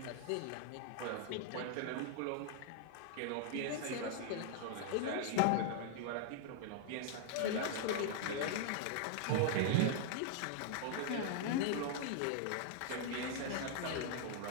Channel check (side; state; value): both; different; correlation 0.00